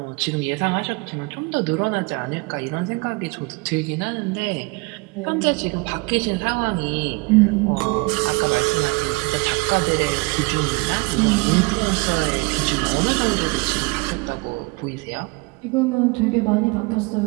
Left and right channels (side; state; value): left; quieter; 26.7 dB